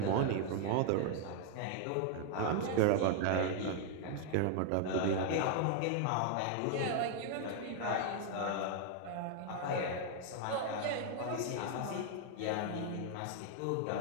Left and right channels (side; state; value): both; different; correlation 0.00